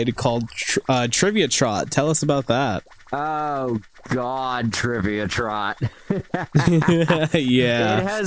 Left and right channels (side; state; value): both; identical; correlation 1.00